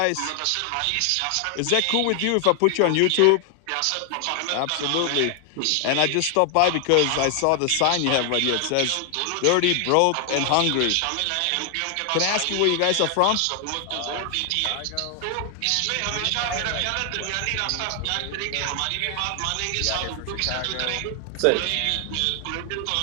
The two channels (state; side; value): different; both; correlation 0.00